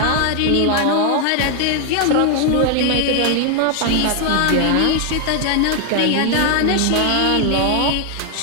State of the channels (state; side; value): different; both; correlation 0.00